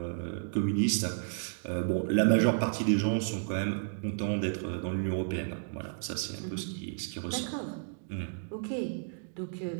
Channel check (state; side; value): silent; left; digital silence